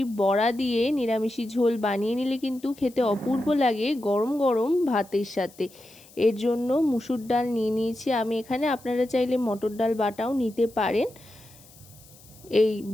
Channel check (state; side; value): noise; left; hiss, 24 dB below the sound